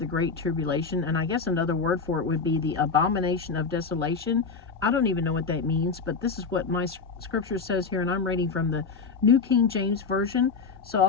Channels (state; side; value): quieter; right; 4.9 dB